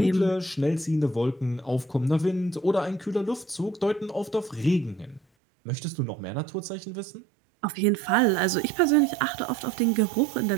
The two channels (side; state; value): left; drops out; at 5.2 s